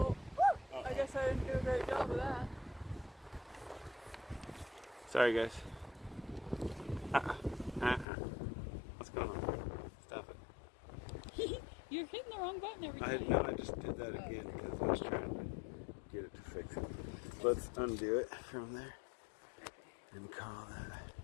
I guess I didn't do a great job of that. Sorry, guys. What's going on? Stop it. You're hitting the wrong button every time. I just did that again because I was trying to get it to fix it. Let's undo it from there and call that.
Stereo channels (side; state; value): right; drops out; at 8.1 s